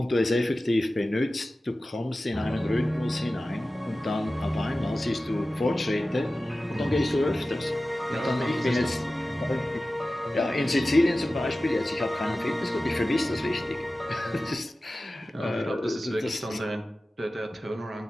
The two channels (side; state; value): both; normal; correlation 0.95